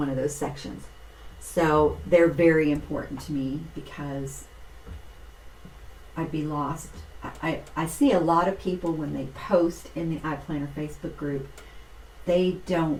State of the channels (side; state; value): both; identical; correlation 1.00